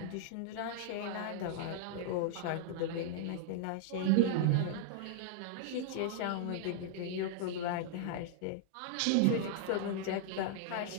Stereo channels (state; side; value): different; both; correlation -0.01